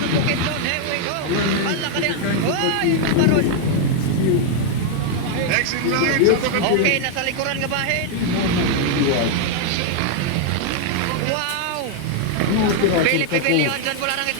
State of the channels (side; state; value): both; different; correlation 0.00